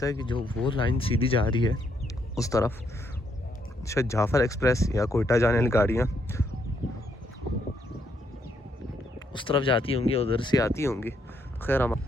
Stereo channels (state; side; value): normal; both; correlation 0.74